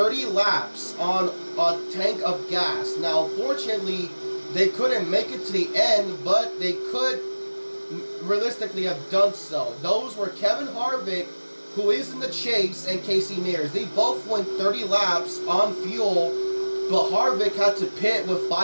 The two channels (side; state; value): both; inverted; correlation -1.00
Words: laps on a tank of gas. Now, fortunately, they couldn't make it to the end, but they could realistically have done so. Those were Kevin Harvick, who is in the chase, and Casey Mears. They both went 30 laps on fuel, but Harvick had to pit with